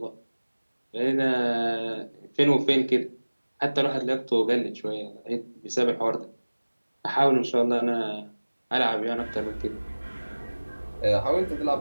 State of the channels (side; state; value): both; inverted; correlation -1.00